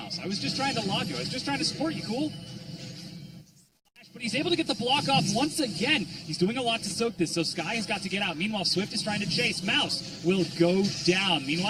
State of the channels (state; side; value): identical; both; correlation 1.00